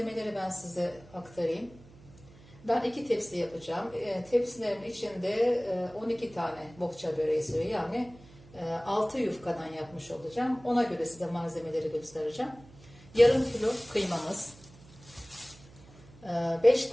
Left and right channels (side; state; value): right; noise; hum, 23 dB below the sound